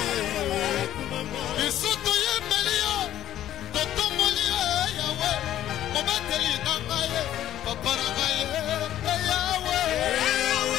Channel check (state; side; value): quieter; right; 12.3 dB